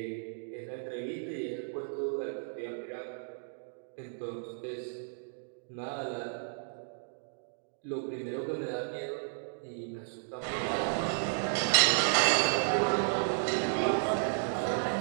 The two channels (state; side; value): silent; left; digital silence